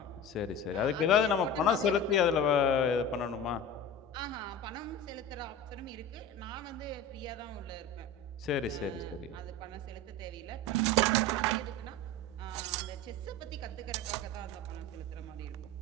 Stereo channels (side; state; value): both; normal; correlation 0.31